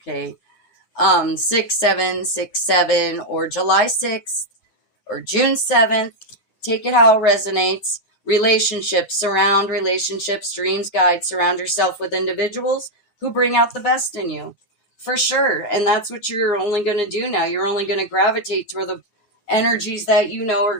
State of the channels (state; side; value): late; right; 9.4 ms